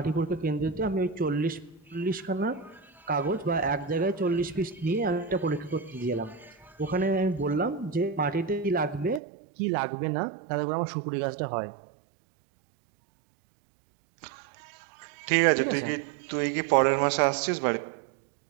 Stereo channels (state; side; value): drops out; left; at 9.2 s